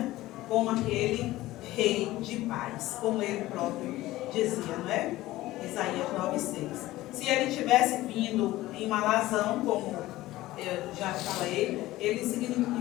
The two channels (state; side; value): quieter; right; 16.9 dB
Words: como aquele rei de paz, como ele próprio dizia, não é? Isaías 9:6. Se ele tivesse vindo em uma alazão, como eu já falei, ele